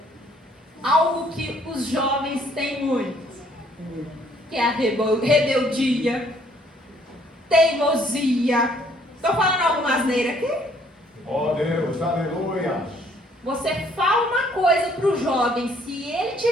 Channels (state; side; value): normal; both; correlation 0.63